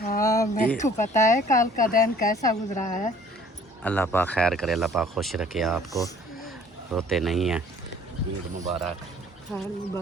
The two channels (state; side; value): normal; both; correlation 0.54